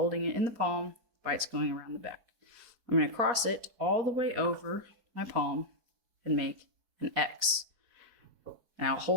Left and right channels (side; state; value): left; late; 4.6 ms